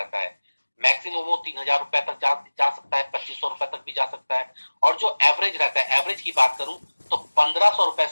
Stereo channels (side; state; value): both; inverted; correlation -1.00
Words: है। मैक्सिमम वो 3,000 रुपए तक जा सकता है, 2,500 रुपए तक भी जा सकता है। और जो एवरेज रहता है, एवरेज की बात करूं तो 1,500 रुपए